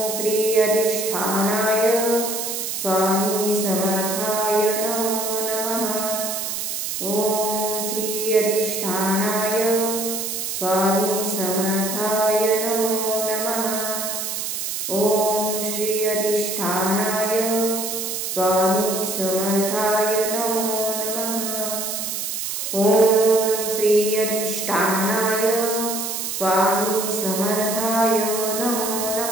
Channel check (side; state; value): right; noise; hiss, 3 dB below the sound